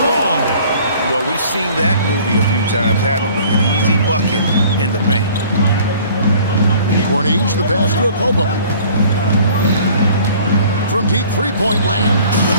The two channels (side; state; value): both; inverted; correlation -0.51